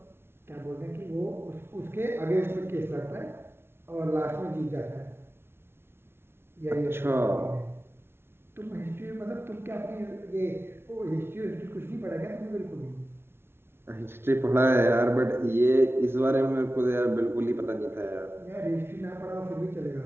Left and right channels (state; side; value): late; left; 0.12 ms